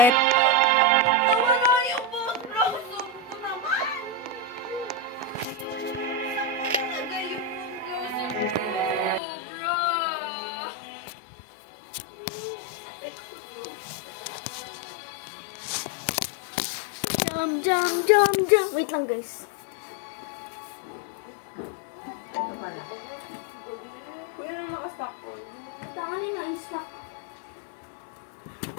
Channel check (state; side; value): drops out; right; at 9.2 s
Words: Wala yung blossom ko naman. Nilagay yung Jump, jump, jump. Wait lang, guys. Kuya, nakastock. Tanganin na, stock.